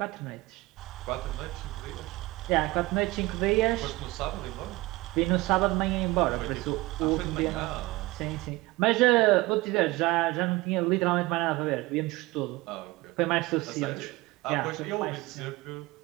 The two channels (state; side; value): quieter; left; 20.7 dB